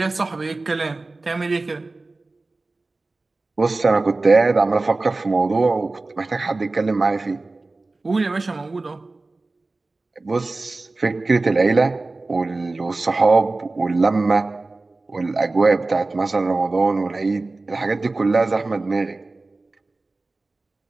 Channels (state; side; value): quieter; left; 3.3 dB